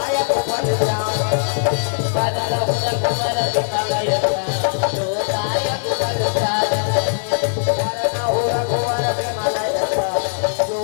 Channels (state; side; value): silent; right; digital silence